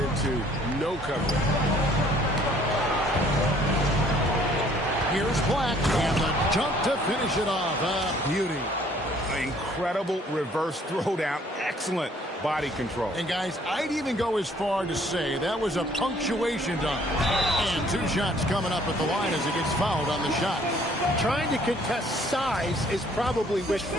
no coverage. Here's Black, and the jump to finish it off. A beauty. Incredible reverse throwdown. Excellent body control. And guys, I'd even go as far to say that was a punctuation dunk. And 2 shots coming up at the line as he gets fouled on the shot. Trying to contest size is probably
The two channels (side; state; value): both; normal; correlation 0.60